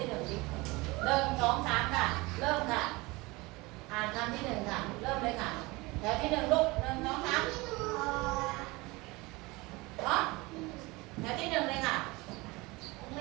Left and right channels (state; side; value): quieter; left; 23.2 dB